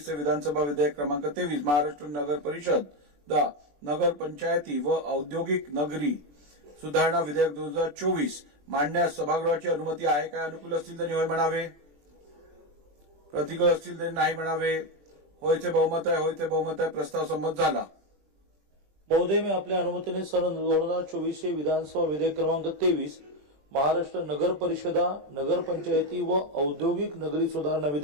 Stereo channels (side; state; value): left; late; 21 ms